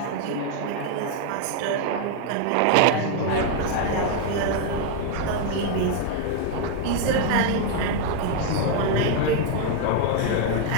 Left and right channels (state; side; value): different; both; correlation 0.01